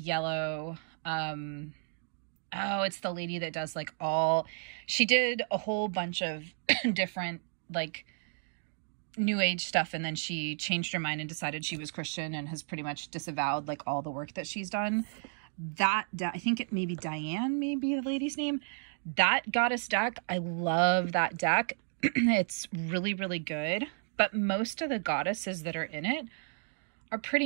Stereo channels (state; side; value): silent; left; digital silence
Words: Oh, it's the lady that does like she did a whole bunch of different like new age stuff, and then she changed her mind and decided she was Christian and has pretty much disavowed like all the work that she's done. I think it may be Diane, maybe the lady's name. That goddess deck, I love that deck. It's really, really good. But most of the goddesses that are in it are pretty